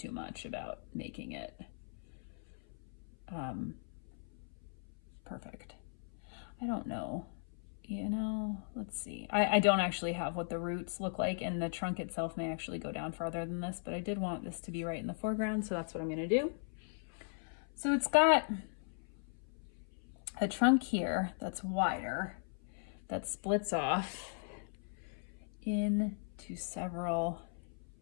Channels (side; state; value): right; silent; 52 dB below the other